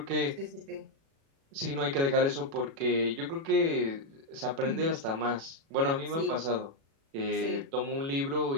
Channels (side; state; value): left; late; 36 ms